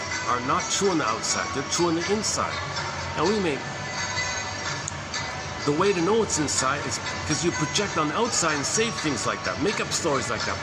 not true on the outside. They're true on the inside. And the way to know it's inside is because you project on the outside and say things like that, make up stories like that.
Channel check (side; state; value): both; identical; correlation 1.00